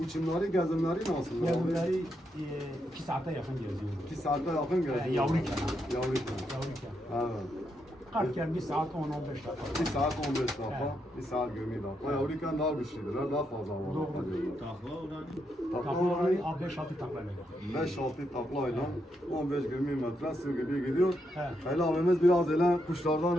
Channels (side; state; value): both; normal; correlation 0.81